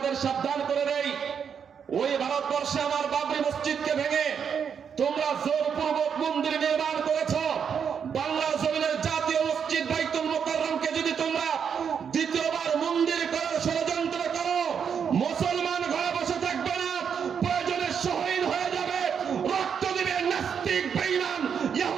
সাবধান করে দেই, ওই ভারতবর্ষে আমার বাবরি মসজিদকে ভেঙে তোমরা জোরপূর্বক মন্দির নির্মাণ করেছ। বাংলার জমিনের জাতীয় মসজিদ বাইতুল মোকাররমকে যদি তোমরা দ্বিতীয়বার মন্দির করার ষড়যন্ত্র করো, মুসলমান ঘরে বসে থাকবে না, প্রয়োজনে শহীদ হয়ে যাবে, রক্ত দিবে, নাস্তিক বেঈমান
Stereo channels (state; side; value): quieter; left; 7.2 dB